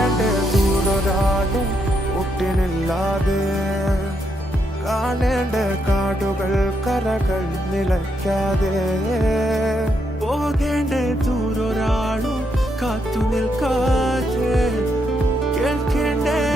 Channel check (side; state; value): both; normal; correlation 0.78